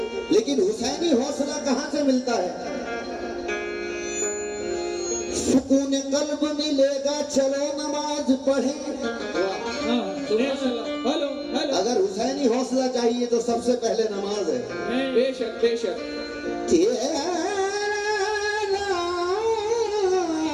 लेकिन हुसैनी हौसला कहां से मिलता है? सुकून कल्ब मिलेगा चलो नमाज पढ़े। हेलो हेलो अगर हुसैनी हौसला चाहिए तो सबसे पहले नमाज है। बेशक बेशक तेरा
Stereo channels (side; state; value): both; identical; correlation 1.00